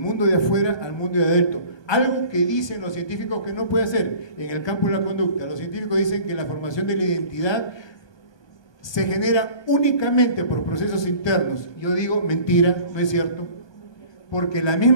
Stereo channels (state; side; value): late; right; 1.2 ms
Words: de afuera al mundo de adentro. Algo que dicen los científicos que no puede hacer en el campo de la conducta. Los científicos dicen que la formación de la identidad se genera únicamente por procesos internos. Yo digo, mentira, no es cierto, porque la